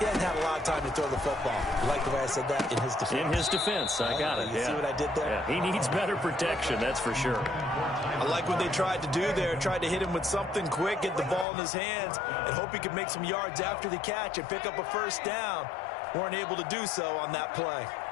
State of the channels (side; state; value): right; drops out; at 11.5 s